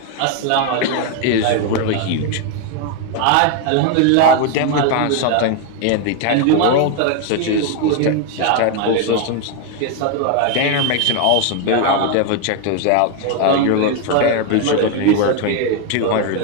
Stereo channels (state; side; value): different; both; correlation 0.01